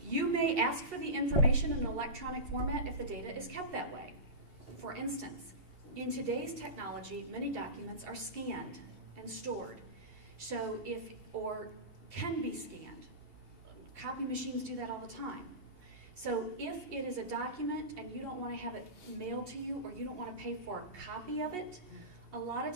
You may ask for the information in an electronic format if the data is kept that way. For instance, in today's technology, many documents are scanned and stored. So or can be scanned. Copy machines do that all the time. So if it is a document and you don't want to have it mailed to you, or you don't want to pay for a copy of it, a lot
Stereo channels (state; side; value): late; left; 2.8 ms